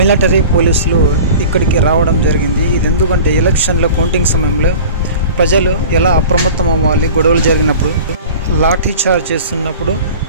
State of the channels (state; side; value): inverted; both; correlation -0.39